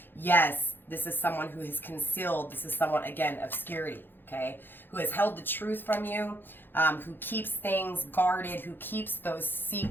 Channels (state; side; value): late; right; 0.099 ms